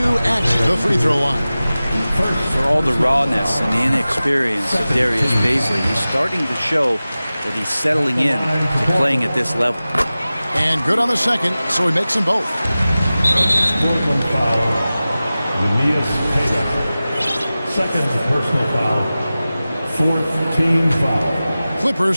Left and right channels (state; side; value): inverted; both; correlation -0.96